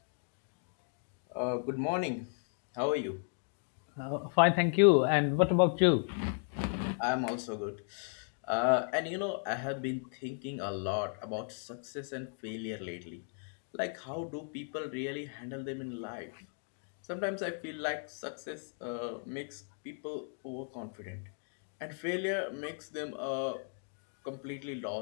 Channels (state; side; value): silent; right; 54 dB below the other